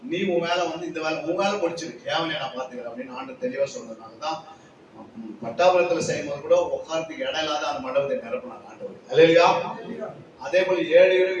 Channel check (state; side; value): identical; both; correlation 1.00